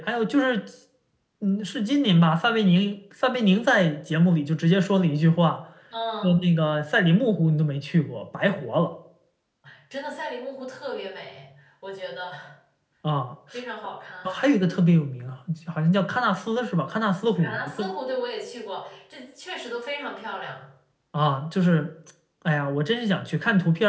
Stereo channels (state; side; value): identical; both; correlation 1.00